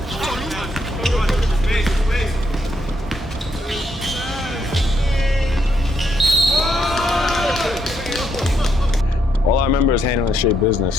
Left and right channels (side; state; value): both; normal; correlation 0.76